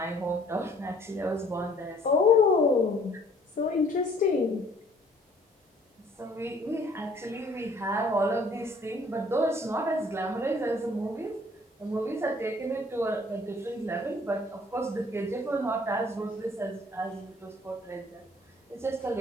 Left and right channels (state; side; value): normal; both; correlation 0.58